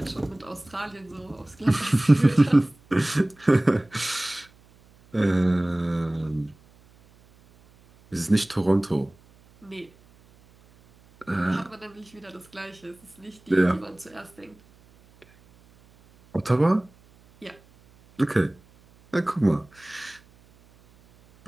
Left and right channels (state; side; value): noise; right; hum, 29 dB below the sound